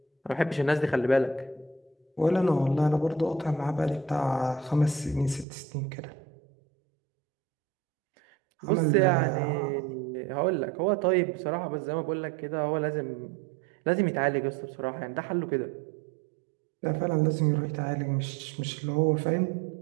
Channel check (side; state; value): left; drops out; at 5.5 s